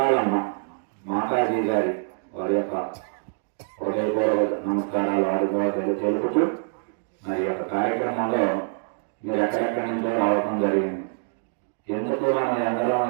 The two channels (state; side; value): silent; left; 62 dB below the other